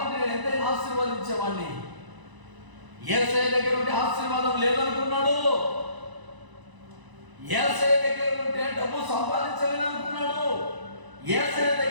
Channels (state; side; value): late; left; 1.0 ms